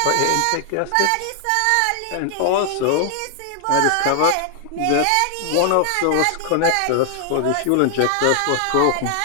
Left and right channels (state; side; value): different; both; correlation 0.00